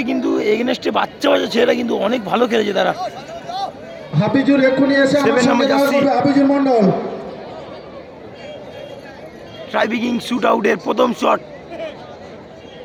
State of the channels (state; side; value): identical; both; correlation 1.00